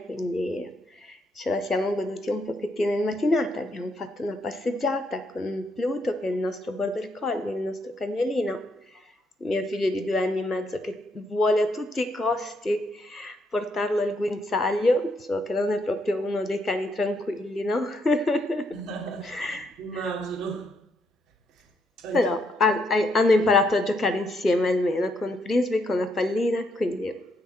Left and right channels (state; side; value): normal; both; correlation 0.76